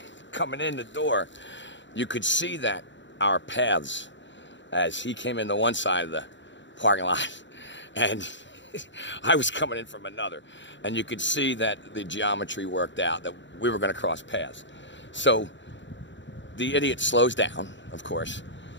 the door. You could see that our paths, as he came in the one side of the parking lot and I was coming in from another, and you could see that the geometry worked out, that we were going to cross paths. So the idiot slows down, of course,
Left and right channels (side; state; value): right; late; 0.54 ms